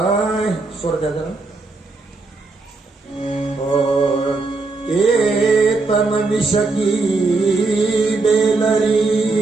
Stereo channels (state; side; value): quieter; left; 3.7 dB